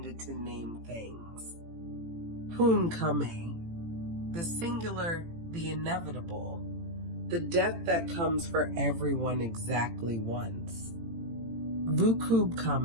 to name things. Hun Kame, the singular, the inevitable, the death that comes for everyone exactly once. Vukub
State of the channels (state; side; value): late; left; 18 ms